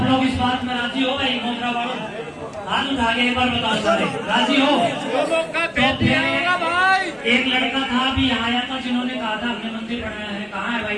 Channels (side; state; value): both; identical; correlation 1.00